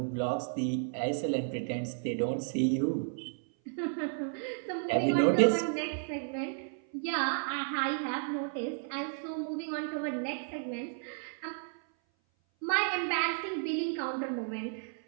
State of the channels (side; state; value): left; silent; 56 dB below the other